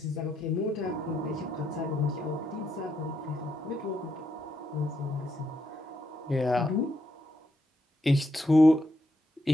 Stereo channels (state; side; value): normal; both; correlation 0.79